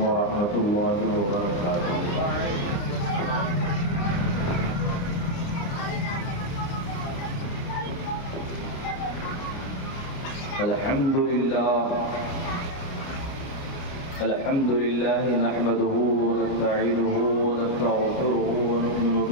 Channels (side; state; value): right; late; 29 ms